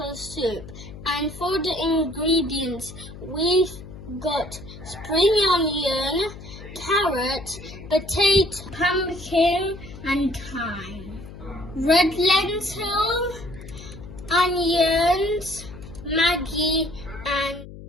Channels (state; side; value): noise; left; hum, 14 dB below the sound